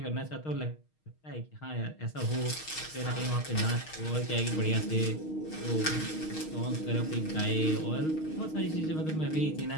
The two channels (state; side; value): late; right; 6.4 ms